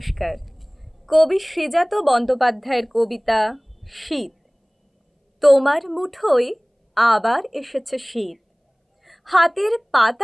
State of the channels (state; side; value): identical; both; correlation 1.00